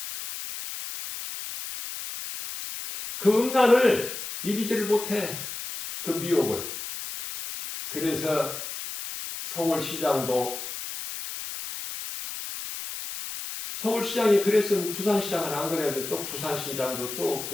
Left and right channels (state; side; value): noise; left; hiss, 8 dB below the sound